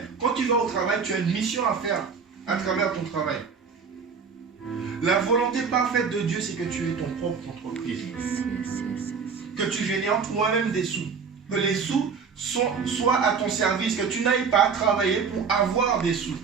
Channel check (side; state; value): left; quieter; 5.8 dB